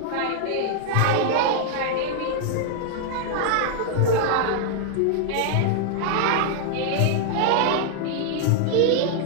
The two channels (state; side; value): different; both; correlation -0.01